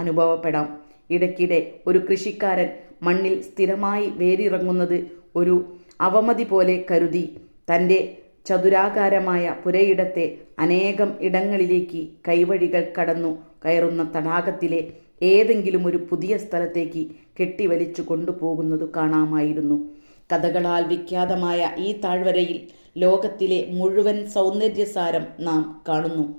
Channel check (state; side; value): inverted; both; correlation -1.00